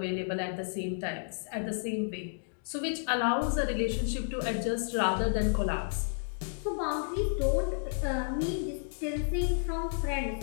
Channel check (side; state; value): right; silent; digital silence